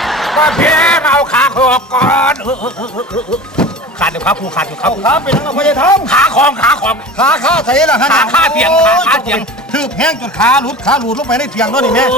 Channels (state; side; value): normal; both; correlation 0.35